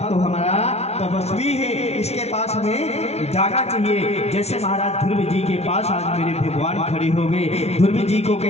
तो हमारा तपस्वी है, इसके पास हमें जाना चाहिए। जैसे महाराज ध्रुव जी के पास आज मेरे भगवान खड़े हो गए। ध्रुव जी को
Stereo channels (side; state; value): right; late; 0.31 ms